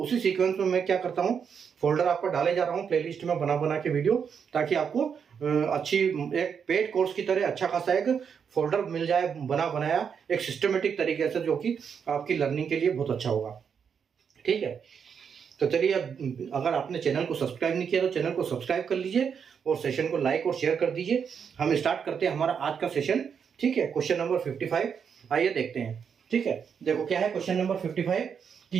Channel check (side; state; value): left; quieter; 7.0 dB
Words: सीक्वेंस में मैं क्या करता हूँ, फोल्डर आपको डाले जा रहा हूँ प्लेलिस्ट में बना बना के वीडियो, ताकि आपको अच्छी एक पेड कोर्स की तरह अच्छा खासा एक फोल्डर मिल जाए बना बनाया एक सिस्टमेटिक तरीके से, जो कि आपकी लर्निंग के लिए बहुत अच्छा होगा, ठीक है। तो चलिए, अब अगर आपने चैनल को सब्सक्राइब नहीं किया तो चैनल को सब्सक्राइब कर लीजिए और सेशन को लाइक और शेयर कर दीजिए। हम स्टार्ट करते हैं हमारा आज का सेशन, ठीक है। क्वेश्चन नंबर 55 आइए देखते हैं, ठीक है। देखो क्या है क्वेश्चन नंबर 55,